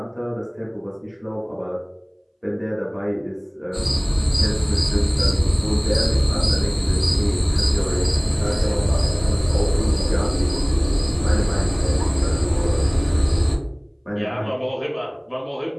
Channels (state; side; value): identical; both; correlation 1.00